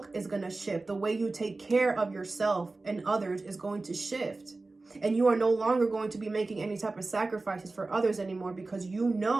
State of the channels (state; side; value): quieter; left; 3.4 dB